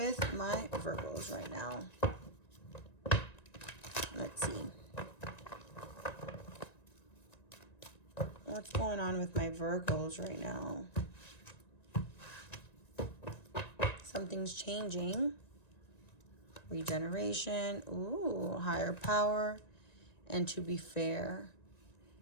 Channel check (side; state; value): right; late; 1.9 ms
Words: my Virgos right now? Let's see. What's going on with my Virgos right now? Something's changing. Regeneration. Ooh, higher power. And to be fair.